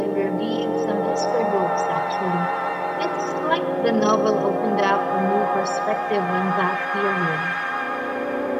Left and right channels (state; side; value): identical; both; correlation 1.00